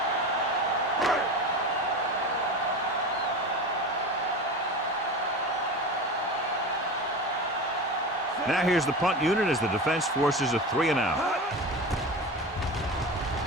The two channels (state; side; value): normal; both; correlation 0.28